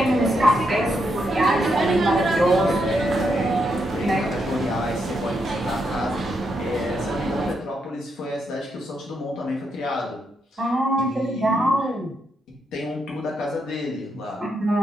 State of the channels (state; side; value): normal; both; correlation 0.81